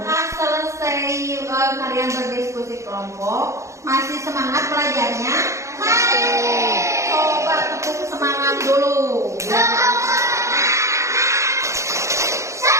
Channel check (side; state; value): left; late; 0.14 ms